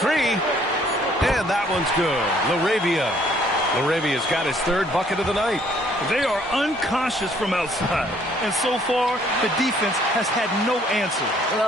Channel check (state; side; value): normal; both; correlation 0.62